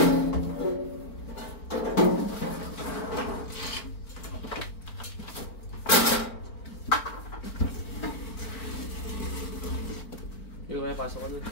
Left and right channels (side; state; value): right; late; 4.5 ms